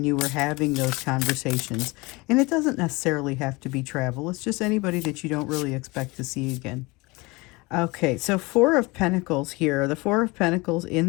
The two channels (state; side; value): quieter; right; 24.3 dB